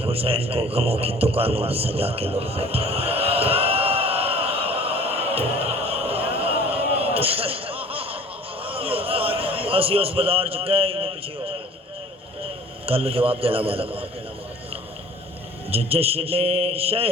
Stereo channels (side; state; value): both; normal; correlation 0.47